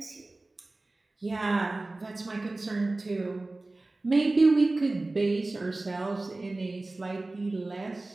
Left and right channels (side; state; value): left; quieter; 3.0 dB